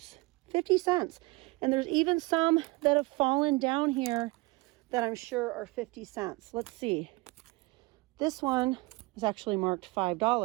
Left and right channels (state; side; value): quieter; left; 24.4 dB